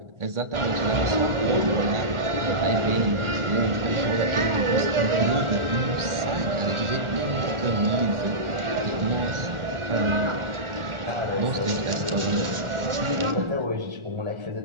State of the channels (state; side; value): late; left; 1.4 ms